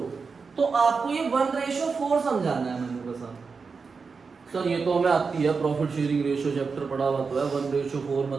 तो आपको ये 1:4 समझाना है मैंने बस। सर ये तो हमें आती है, प्रॉफिट शेयरिंग रेशियो चैप्टर पढ़ा हुआ तो है। 1:4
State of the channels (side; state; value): left; quieter; 5.0 dB